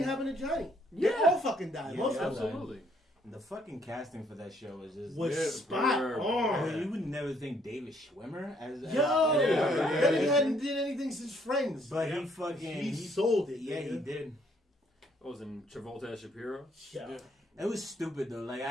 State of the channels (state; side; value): normal; both; correlation 0.67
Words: happened to Johnny. They Yeah. all fucking died. Yeah, Most of them Absolutely. the fucking casting for that show was just... was Yeah, spot bro. I on. mean, you would never think David Schwimmer as... Yo, Yeah, that nigga hadn't did anything since Friends. But he fucking... he sold it. Yeah, nigga. he did. What was in Travolta as Shapiro? Yeah. Yeah. It was stupid, though. Like,